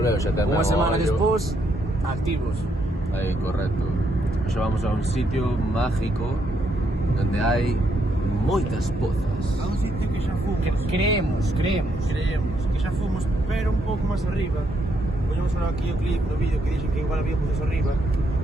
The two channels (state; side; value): normal; both; correlation 0.75